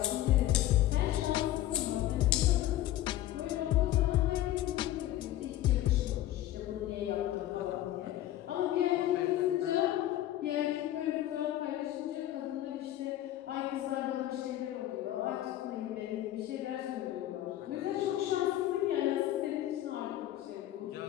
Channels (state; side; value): quieter; right; 13.8 dB